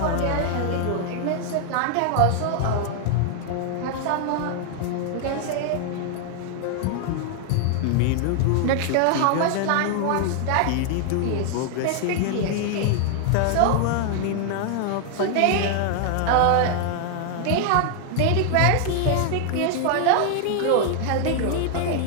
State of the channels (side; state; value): both; different; correlation 0.00